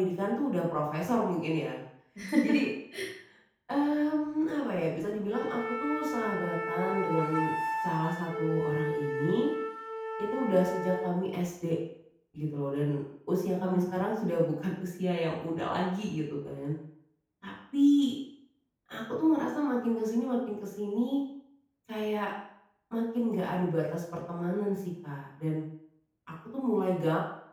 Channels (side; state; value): both; identical; correlation 1.00